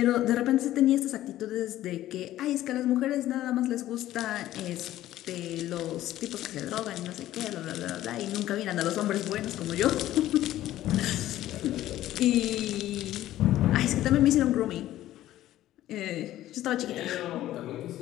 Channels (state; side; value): quieter; right; 14.0 dB